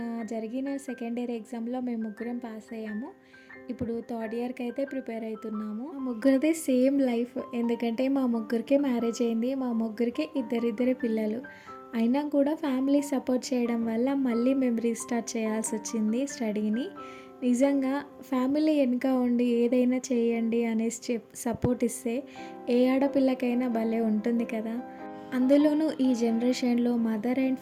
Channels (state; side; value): identical; both; correlation 1.00